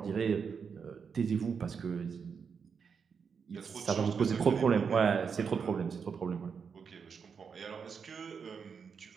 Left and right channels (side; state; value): left; quieter; 6.2 dB